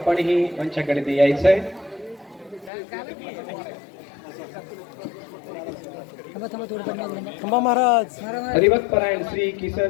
मंचाकडे यायचं आहे. थांबा थांबा थोडं थांबा. थांबा महाराज. हरिभक्तपरायण श्री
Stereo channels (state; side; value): drops out; right; at 2.7 s